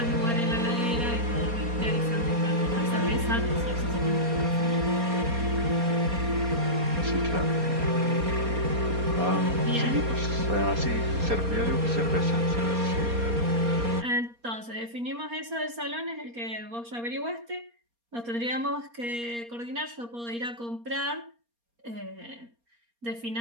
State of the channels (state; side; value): late; left; 4.3 ms